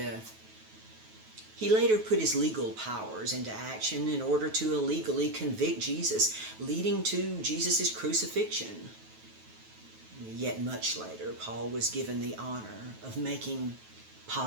He later put his legal powers into action in order to illegally convict Jesus, leading to Jesus' crucifixion. Yet much later, Paul was given the honor of making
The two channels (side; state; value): left; late; 9.3 ms